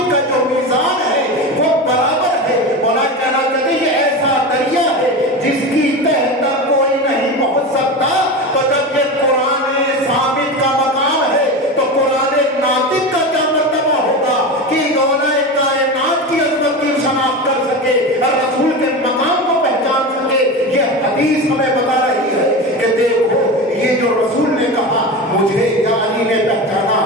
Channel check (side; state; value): both; normal; correlation 0.24